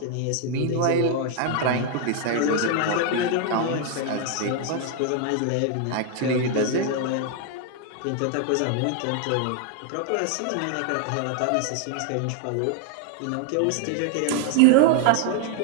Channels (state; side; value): different; both; correlation 0.00